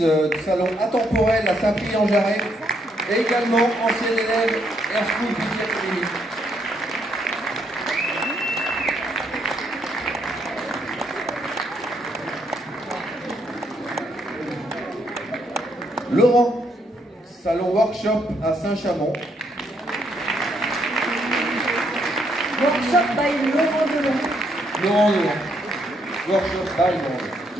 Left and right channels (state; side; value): normal; both; correlation 0.74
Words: du salon Atemporel à Saint-Prix-en-Jarret, également ancienne élève Air School Beauty Academy. Laurent, salon Workshop à Saint-Chamond. Workshop by Laurent Delon. Workshop by Laurent.